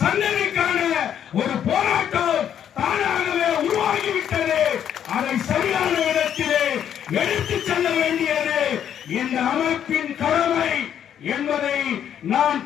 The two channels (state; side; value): quieter; right; 9.4 dB